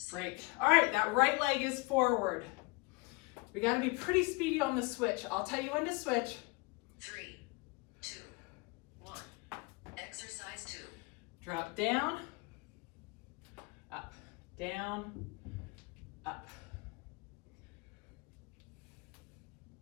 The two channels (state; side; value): quieter; right; 26.9 dB